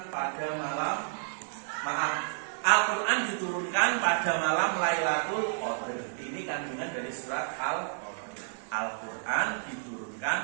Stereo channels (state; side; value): silent; left; digital silence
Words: pada Al-Quran diturunkan pada malam Lailatul Qadar. Ini kandungan dari surat Al-Qadr. Al-Quran